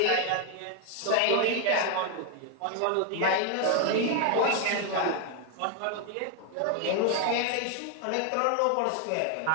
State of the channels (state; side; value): different; both; correlation 0.01